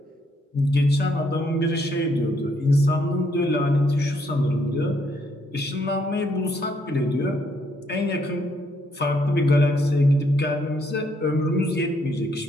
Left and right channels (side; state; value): both; normal; correlation 0.72